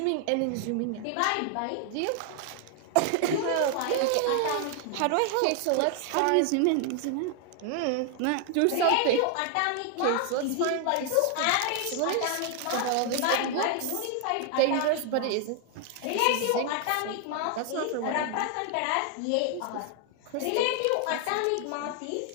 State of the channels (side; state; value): both; different; correlation 0.00